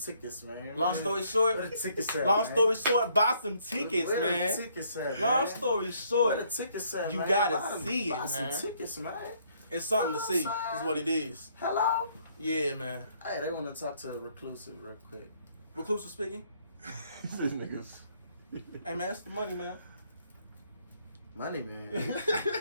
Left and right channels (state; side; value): inverted; both; correlation -0.67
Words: man. long story short, Where the tickets at, long man? story short, buy some tickets, Where man. the tickets at, Long man? story Where short, the tickets at, you man? gotta Buy them- see it, buy some man. tickets, man. it's something to see. outside. Is what it is. Hello? Yeah, man. Hey, they want to talk to Reclusive real quick. Reclusive speaking. These niggas. Hey, man, it's the money, man. Money, man.